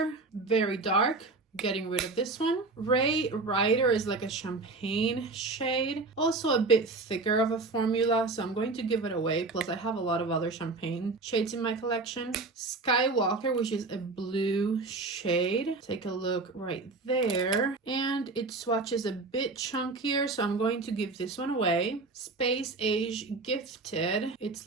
very dark. Getting rid of this one. Ray Rider is like a champagne shade. Also a bit thicker of a formula, so I'm going to give it away. Plus I have a lot of other champagne shades in my collection. Skywalker, which is a blue shade. Take a look right there. And it swatches a bit chunkier, so I'm going to give this one away. Space Age Gifted.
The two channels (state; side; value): quieter; left; 3.6 dB